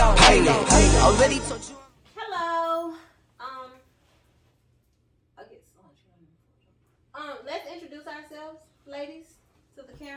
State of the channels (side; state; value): both; identical; correlation 1.00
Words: already told you. Hello. I get so much. Let's introduce ourselves, ladies, to the